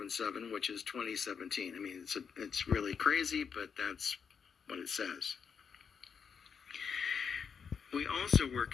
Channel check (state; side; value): quieter; right; 6.6 dB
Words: which is 2017. I mean, it's really crazy, but that's what it says. We also were